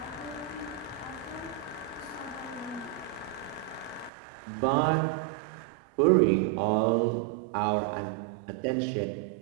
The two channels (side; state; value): left; drops out; at 4.1 s